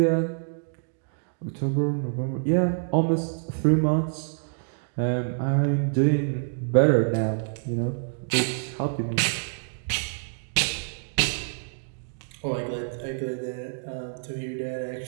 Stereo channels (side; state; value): left; silent; digital silence